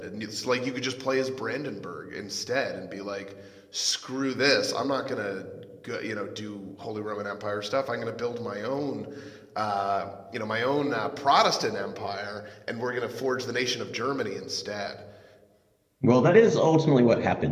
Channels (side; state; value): both; identical; correlation 1.00